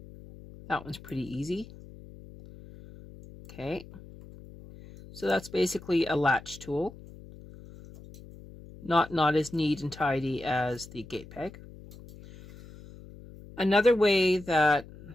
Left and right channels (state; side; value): noise; left; hum, 18 dB below the sound